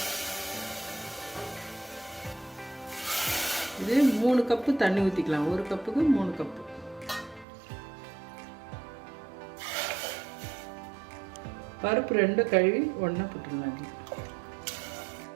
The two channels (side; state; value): left; drops out; at 7.5 s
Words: இது 3 கப் தண்ணி ஊத்திக்கலாம். 1 கப்புக்கு 3 கப். பருப்பு 2 கழுவி ஒண்ணா போட்டுடலாம்.